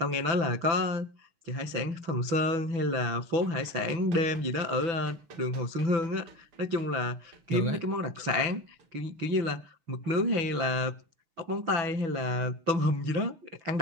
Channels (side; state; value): left; late; 6.0 ms